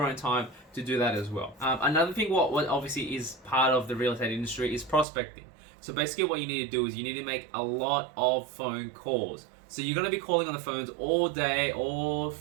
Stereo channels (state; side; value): drops out; left; at 5.1 s